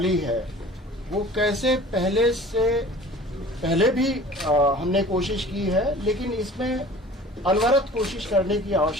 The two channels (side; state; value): both; normal; correlation 0.44